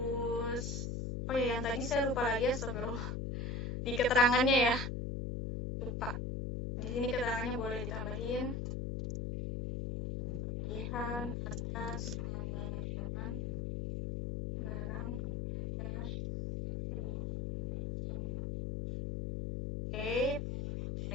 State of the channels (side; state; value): left; noise; hum, 2 dB below the sound